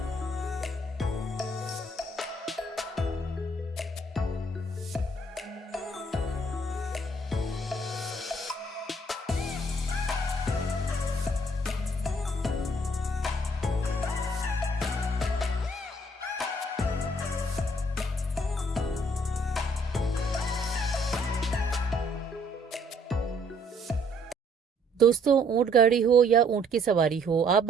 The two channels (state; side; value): normal; both; correlation 0.64